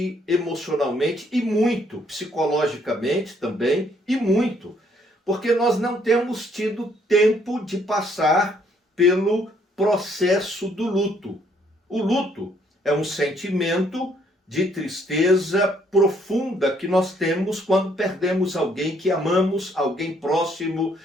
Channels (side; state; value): both; normal; correlation 0.67